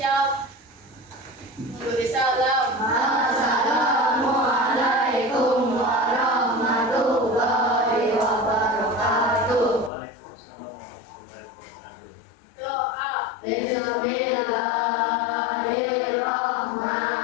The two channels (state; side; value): drops out; right; at 9.9 s